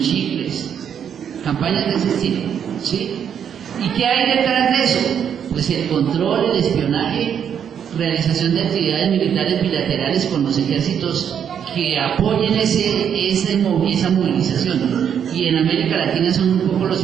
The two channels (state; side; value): quieter; left; 8.3 dB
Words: chicles, campañas de ese estilo, ¿sí? ¿Y qué hay detrás de eso? Pues el control, el espionaje, realización de actividades militares bilaterales con los ejércitos que apoyen esa movilización. Y en América Latina son un poco los